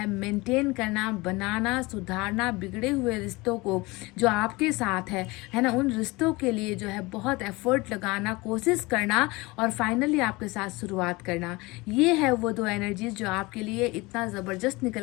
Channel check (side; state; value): right; quieter; 23.1 dB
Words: मेंटेन करना, बनाना, सुधारना, बिगड़े हुए रिश्तों को जो आपके साथ है ना, उन रिश्तों के लिए जो है बहुत एफर्ट लगाना, कोशिश करना, और फाइनली आपके साथ शुरुआत करना। ये है वो 2 एनर्जीज जो आपके लिए इतना ज़बरदस्त